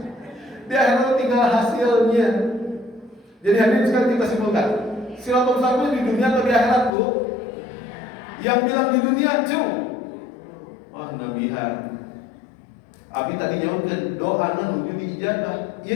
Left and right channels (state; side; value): drops out; right; at 6.9 s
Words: Di akhirat tinggal hasilnya. Jadi hadirin sekarang kita simpulkan, Siratal Mustaqim di dunia atau di akhirat Bu? Yang bilang di dunia cung. Wah nabihan. Abi tadi nyautkeun doana nuju diijabah.